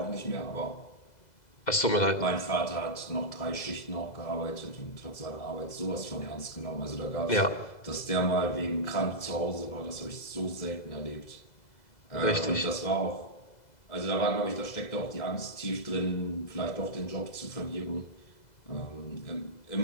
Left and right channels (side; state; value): right; late; 2.0 ms